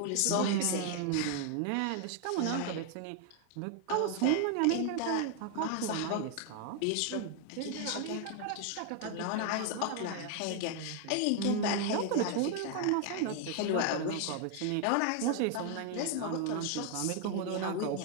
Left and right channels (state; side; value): different; both; correlation 0.00